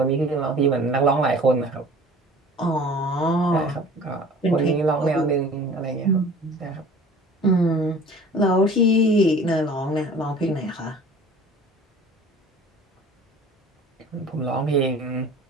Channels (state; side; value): normal; both; correlation 0.45